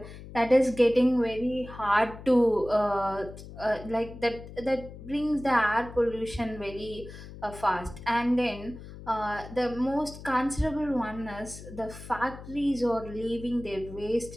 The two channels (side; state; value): left; noise; hum, 14 dB below the sound